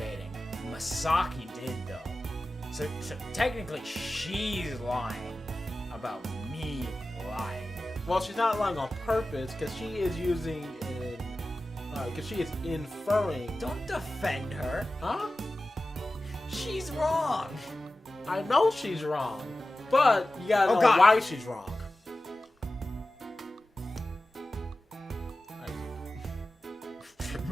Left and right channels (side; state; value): both; normal; correlation 0.95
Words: Masaki did though. So technically, she's lying about me lying. Well, she's not lying on purpose because she is using because she is inferring. Don't defend her. Huh? She's wrong. I know she's wrong, but you gotta know God. why she's wrong.